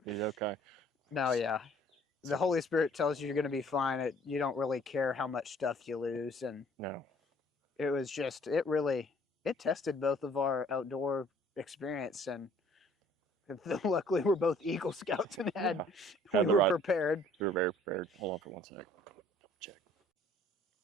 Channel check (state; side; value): normal; both; correlation 0.58